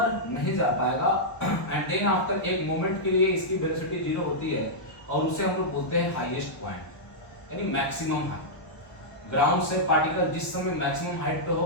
नहीं जा पाएगा। एंड देन आफ्टर एक मोमेंट के लिए इसकी वेलोसिटी जीरो होती है, और उसे हम लोग बोलते हैं हाईएस्ट पॉइंट, यानी मैक्सिमम हाइट। ग्राउंड से पार्टिकल जिस समय मैक्सिमम हाइट पे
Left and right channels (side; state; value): right; late; 1.0 ms